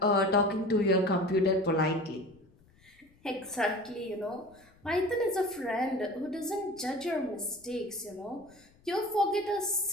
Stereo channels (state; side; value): noise; left; rumble, 29 dB below the sound